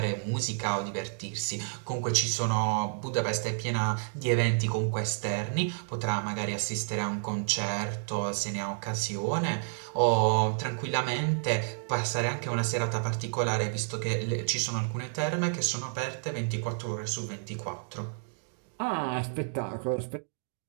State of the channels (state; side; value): silent; left; digital silence